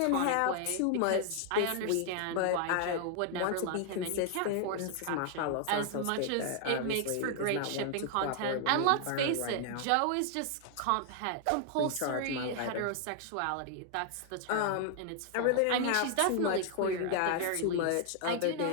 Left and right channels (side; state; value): both; different; correlation 0.00